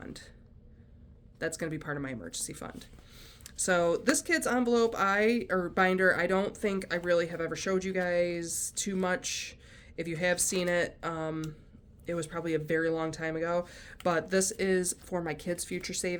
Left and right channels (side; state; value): both; identical; correlation 1.00